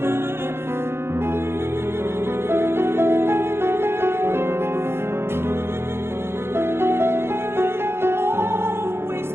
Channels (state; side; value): late; left; 0.12 ms